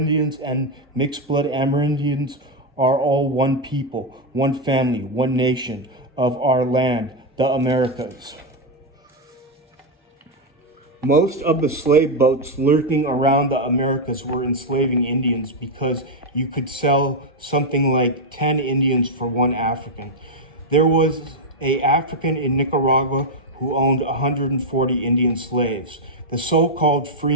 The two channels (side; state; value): both; normal; correlation 0.03